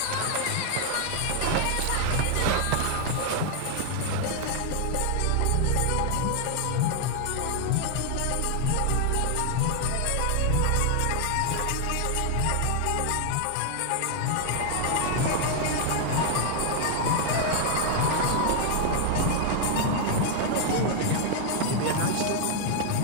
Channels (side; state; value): both; different; correlation 0.00